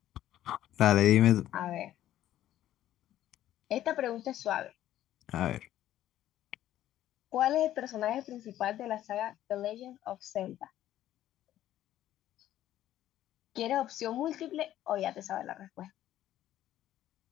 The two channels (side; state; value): right; quieter; 12.8 dB